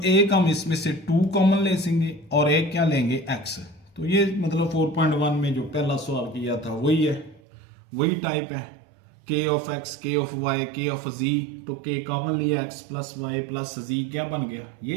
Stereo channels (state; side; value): drops out; left; at 7.4 s